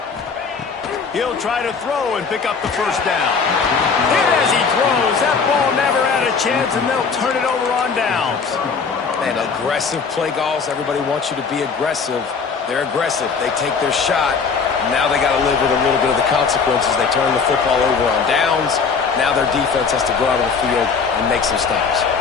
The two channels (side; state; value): right; quieter; 5.4 dB